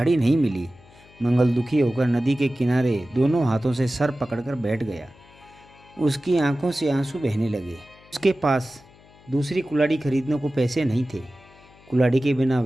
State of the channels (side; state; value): left; noise; hum, 26 dB below the sound